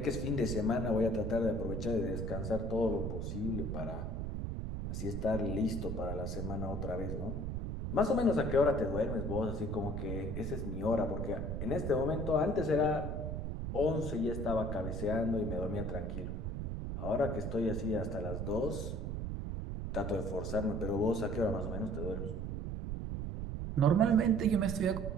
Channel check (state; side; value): noise; right; rumble, 3 dB below the sound